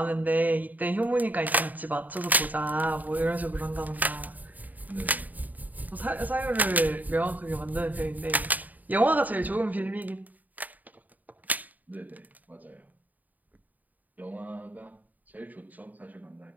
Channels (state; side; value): late; left; 0.080 ms